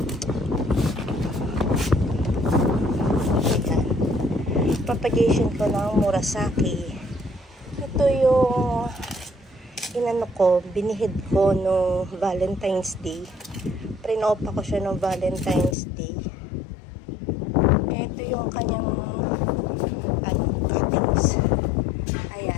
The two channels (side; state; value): right; drops out; at 15.8 s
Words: propagation ko ng Murasaki. Ito yung inano ko, binihid ko no Valentine's Day. Prinopa ko siya no Valentine's Day. Ito yung kanyang cuttings.